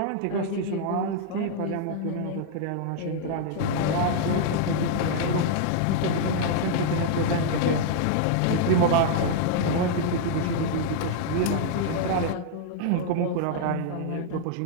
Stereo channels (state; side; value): different; both; correlation -0.01